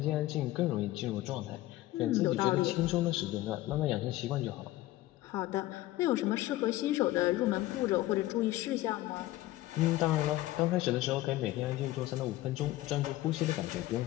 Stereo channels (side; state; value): right; quieter; 16.5 dB